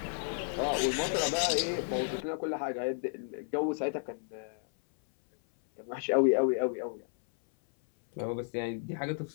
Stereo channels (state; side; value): silent; right; 56 dB below the other